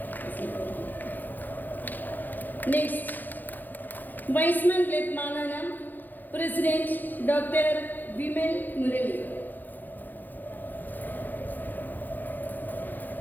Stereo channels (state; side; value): late; right; 0.086 ms